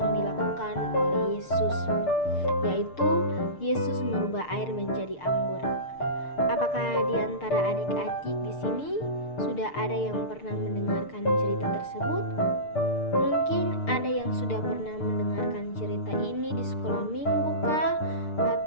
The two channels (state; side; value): late; right; 6.7 ms